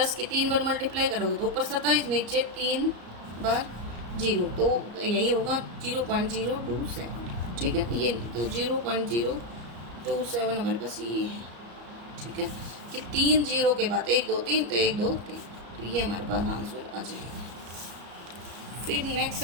की 3 बार मल्टीप्लाई करोगे तो ऊपर 27, नीचे 3 बार 0, तो यही होगा 0.027, ठीक है, ये तो 0.027 हमारे पास ये है, ठीक है, कि 3 0 के बाद 1 2 3, तो 1 2 3, तो ये हमारे पास आंसर आ जाएगा। फिर नेक्स्ट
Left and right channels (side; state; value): left; late; 34 ms